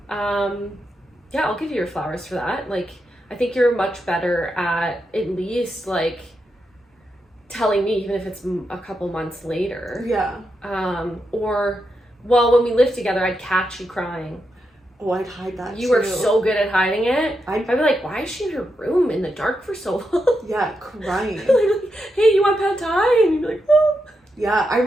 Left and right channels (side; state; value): both; normal; correlation 0.85